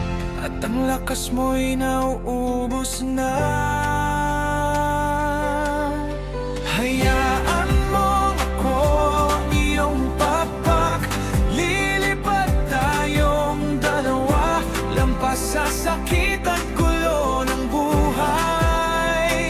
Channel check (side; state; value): both; identical; correlation 1.00